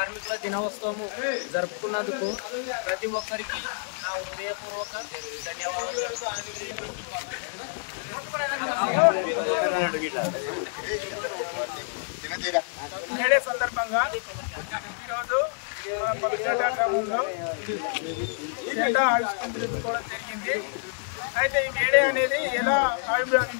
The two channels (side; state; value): right; silent; digital silence